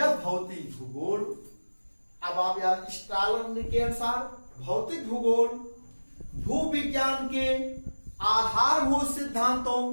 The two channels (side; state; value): both; inverted; correlation -1.00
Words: भौतिक भूगोल, अब आप यार स्ट्रालर के अनुसार भौतिक भूगोल भूविज्ञान के आधारभूत